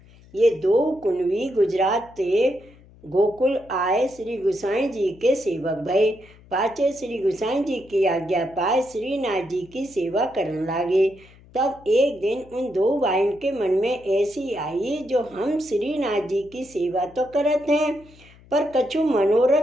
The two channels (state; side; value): noise; left; hum, 25 dB below the sound